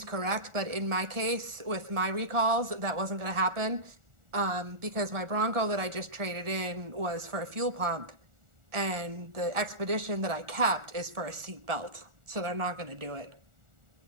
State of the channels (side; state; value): left; late; 1.4 ms